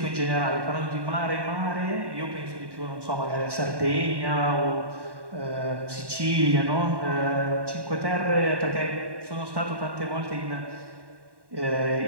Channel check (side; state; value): left; late; 1.1 ms